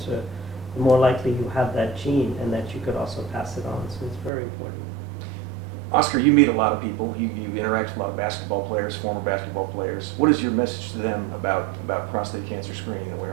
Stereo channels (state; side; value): drops out; left; at 4.3 s